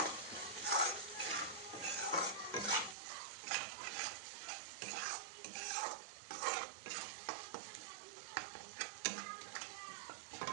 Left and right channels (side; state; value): left; drops out; at 3.0 s